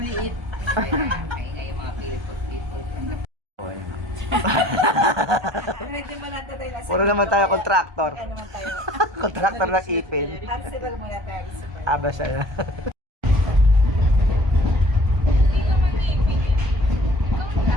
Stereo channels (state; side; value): late; left; 1.2 ms